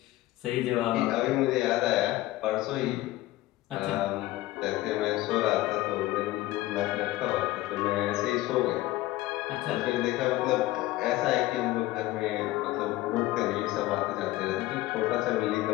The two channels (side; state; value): right; quieter; 17.1 dB